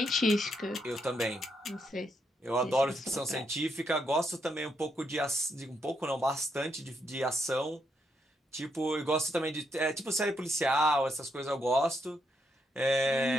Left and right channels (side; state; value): both; normal; correlation 0.78